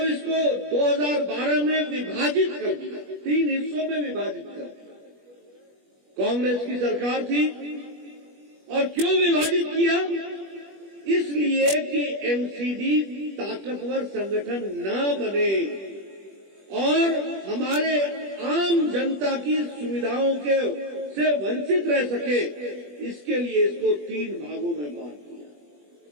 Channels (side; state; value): left; late; 21 ms